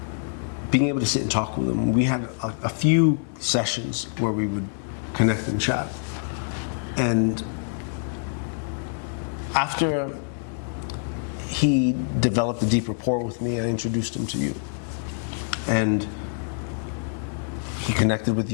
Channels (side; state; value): right; silent; 61 dB below the other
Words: being able to sit and talk with him. We had a few sessions where we would connect and chat. And after he developed a deep rapport with me, I introduced him to you. And he connected with